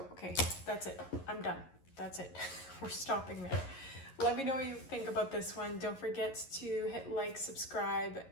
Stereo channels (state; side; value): late; right; 11 ms